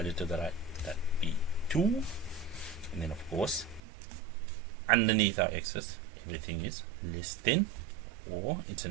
to the right, that be 2. And then of course, underneath our x's, everything is less than, or it's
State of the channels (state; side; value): drops out; left; at 3.8 s